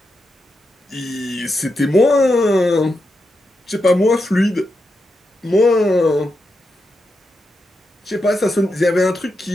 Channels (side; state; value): both; normal; correlation 0.86